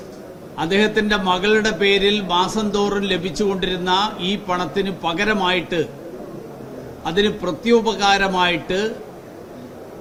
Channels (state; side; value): identical; both; correlation 1.00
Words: അദ്ദേഹത്തിന്റെ മകളുടെ പേരിൽ മാസം തോറും ലഭിച്ചുകൊണ്ടിരുന്ന ഈ പണത്തിന് പകരമായിട്ട്, അതിന് പ്രത്യുപകാരമായിട്ട്